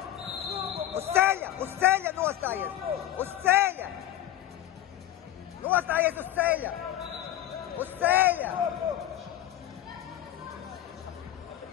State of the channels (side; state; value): right; quieter; 12.6 dB